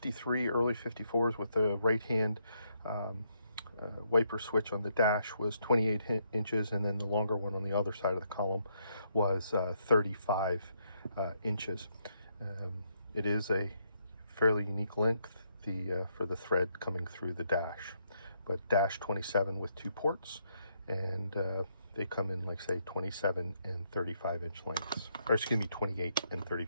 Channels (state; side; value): inverted; both; correlation -0.75